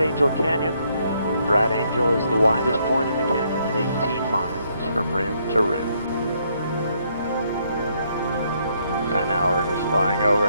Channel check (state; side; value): inverted; both; correlation -0.72